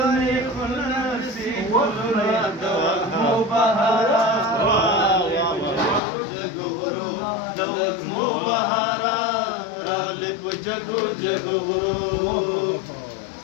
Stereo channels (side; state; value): right; drops out; at 6.0 s